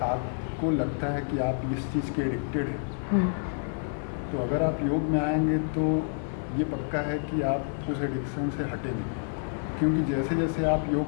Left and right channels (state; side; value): silent; right; 58 dB below the other